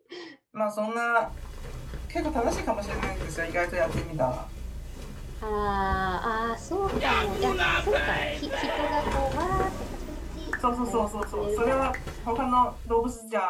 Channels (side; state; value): both; identical; correlation 1.00